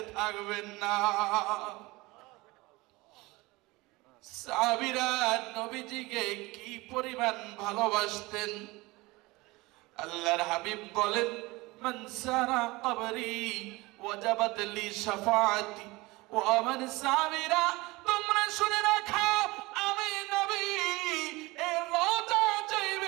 থাকবেন না। সাহাবীরা নবীজিকে কি পরিমাণ ভালোবাসতেন! আল্লাহর হাবিব বলেন, মান সারা কবরি ওয়াজাবাত লি শাফাআতি। ও আমার সাহাবীরা, তোমরা শুনে রাখো, আমি নবী এই রোজা যেই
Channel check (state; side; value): quieter; left; 22.1 dB